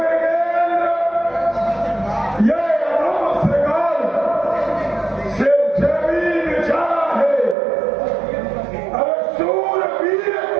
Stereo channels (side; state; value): left; drops out; at 7.6 s